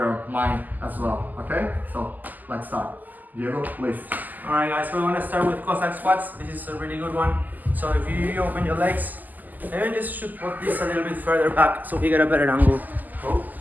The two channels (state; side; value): late; left; 0.083 ms